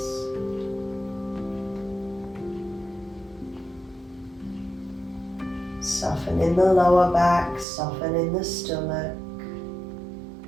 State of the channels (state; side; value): drops out; left; at 7.7 s